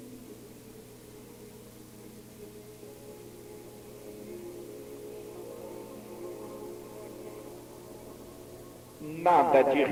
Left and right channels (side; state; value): both; identical; correlation 1.00